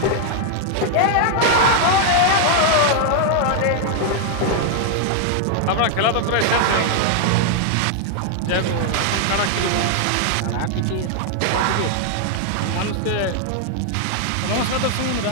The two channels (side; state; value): both; different; correlation 0.00